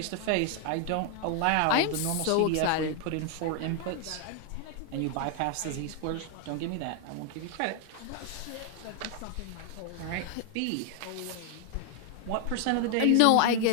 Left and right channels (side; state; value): both; different; correlation 0.00